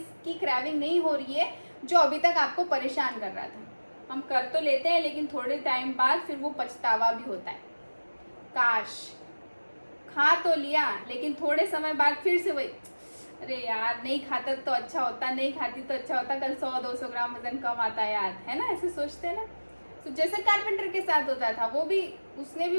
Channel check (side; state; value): both; inverted; correlation -1.00